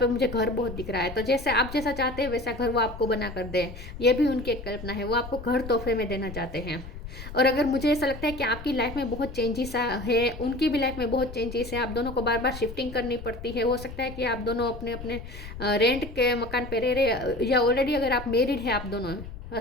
मुझे घर बहुत दिख रहा है, तो जैसे आप जैसा चाहते हैं वैसा घर वो आपको बना कर दे, ये भी उनकी एक कल्पना है। वो आपको घर तोहफे में देना चाहते हैं। और अगर मुझे ऐसा लगता है कि आपकी लाइफ में बहुत चेंजेस है, उनकी भी लाइफ में बहुत चेंजेस है, आप दोनों को बार बार शिफ्टिंग करनी पड़ती है। हो सकता है कि आप दोनों अपने अपने रेंट के मकान पे रह रहे, या ऑलरेडी अगर आप मैरिड है, आप दोनों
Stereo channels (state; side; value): noise; left; rumble, 12 dB below the sound